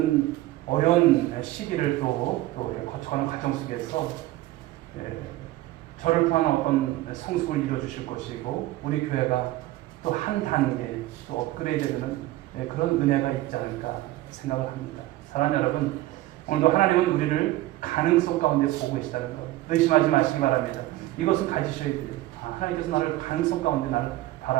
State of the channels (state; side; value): quieter; left; 16.7 dB